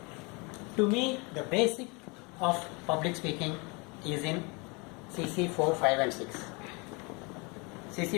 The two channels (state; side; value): quieter; right; 29.4 dB